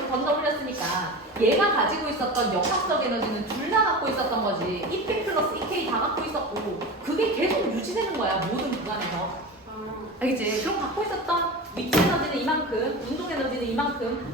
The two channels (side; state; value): both; normal; correlation 0.29